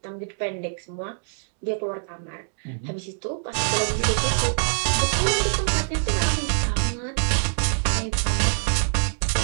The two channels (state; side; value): silent; left; digital silence